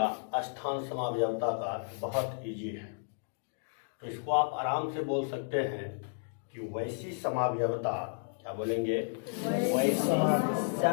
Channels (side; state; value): right; silent; digital silence